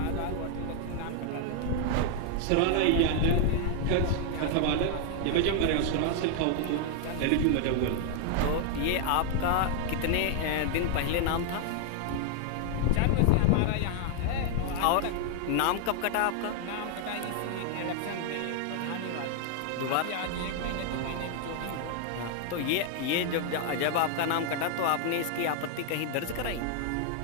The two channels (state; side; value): different; both; correlation 0.00